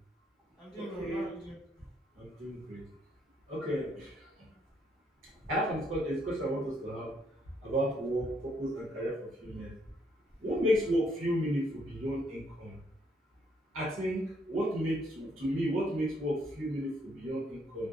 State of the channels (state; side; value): normal; both; correlation 0.71